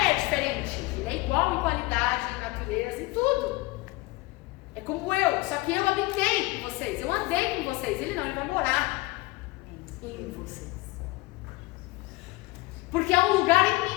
diferente. Ele é igual em qualidade, em natureza, em tudo. É como eu, só que eu habitei com vocês, eu andei com vocês. Ele não, ele vai morar em vocês. Porque é um lugar em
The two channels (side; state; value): right; quieter; 21.5 dB